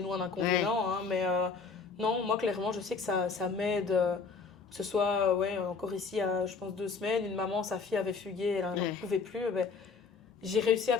nous, un Ouais, inconvénient. Hein, mais non, moi, clairement, je sais que ça m'aide. Que ce soit, ouais, encore ici, je pense 2 semaines, une maman, sa fille avait fugué, elle n'en ouais. pouvait plus. Ben, j'ai réussi à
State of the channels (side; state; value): right; quieter; 4.9 dB